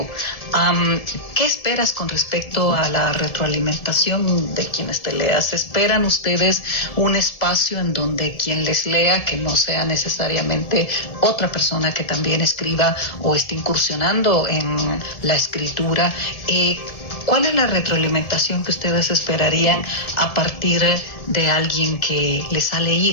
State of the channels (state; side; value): late; right; 1.7 ms